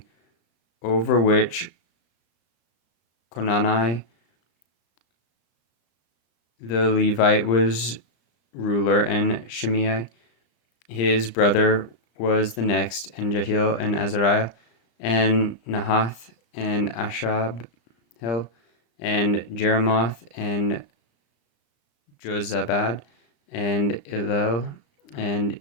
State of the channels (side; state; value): right; late; 35 ms